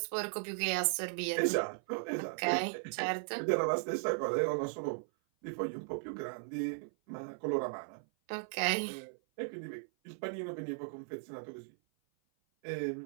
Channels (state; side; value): silent; left; 53 dB below the other